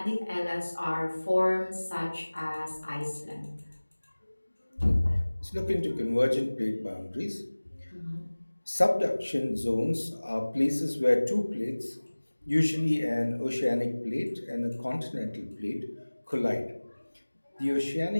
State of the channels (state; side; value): inverted; both; correlation -1.00